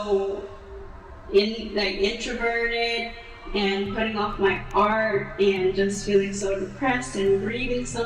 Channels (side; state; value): both; identical; correlation 1.00